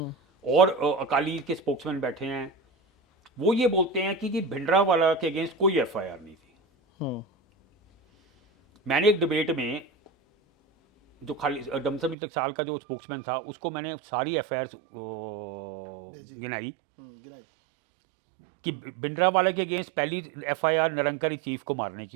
और अकाली के स्पोक्समैन बैठे हैं, वो ये बोलते हैं कि भिंडरावाला के अगेंस्ट कोई एफआईआर नहीं थी। मैंने एक डिबेट में जो खाली दमदमी टकसाल का जो स्पोक्समैन था उसको मैंने सारी एफआईआर भेजी। गिनाई गिनाई। कि भिंडरावाला के अगेंस्ट पहली एफआईआर निरंकारी चीफ को मारने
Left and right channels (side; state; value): left; drops out; at 12.2 s